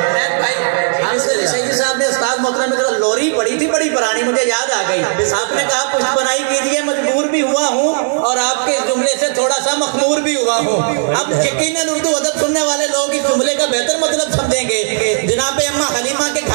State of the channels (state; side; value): silent; left; digital silence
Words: मोहतरम में लोरी पड़ी थी बड़ी पुरानी, मुझे याद आ गई। आपने कहा पुष्प बनाई कीजिए, मजबूर भी हुआ हूँ और आपके इस जुमले से थोड़ा सा मखमूर भी हुआ हूँ। अब यकीनन उर्दू अदब सुनने वाले लोग इस जुमले का बेहतर मतलब समझेंगे। जनाब अम्मा हलीमा के